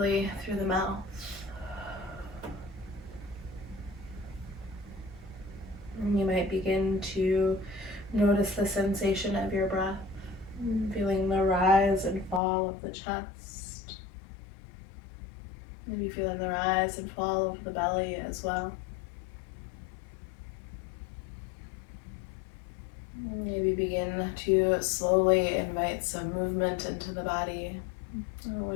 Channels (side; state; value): right; drops out; at 12.4 s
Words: through the mouth. And you might begin to notice the sensation of your breath, feeling the rise and fall of the chest. Maybe feeling the rise and fall of the belly as well. Maybe begin to slowly invite some movement into the body,